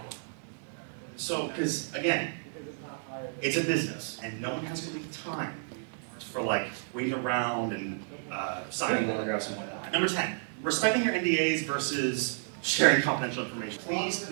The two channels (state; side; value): silent; left; digital silence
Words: So, because again, it's a business, and no one has really time for like waiting around and signing autographs and whatnot. Number 10, respecting your NDAs versus sharing confidential information. Please,